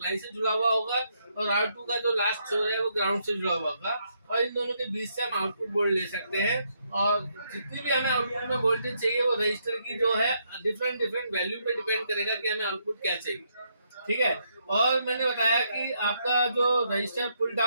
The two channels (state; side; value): inverted; both; correlation -0.76